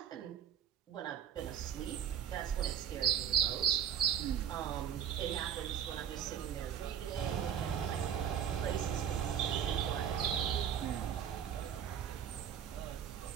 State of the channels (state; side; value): quieter; left; 9.1 dB